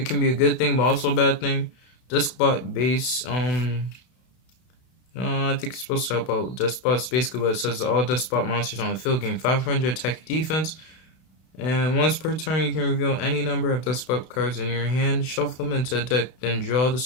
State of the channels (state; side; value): late; right; 32 ms